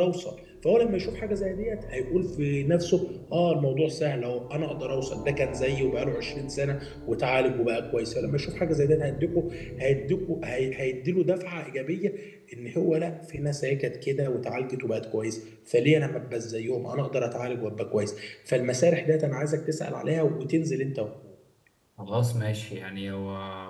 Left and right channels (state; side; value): identical; both; correlation 1.00